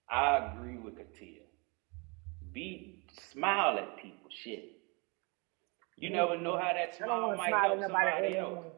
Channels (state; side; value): quieter; left; 30.5 dB